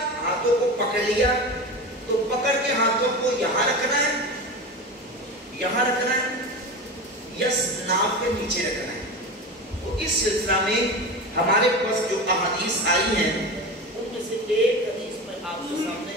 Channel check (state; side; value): normal; both; correlation 0.26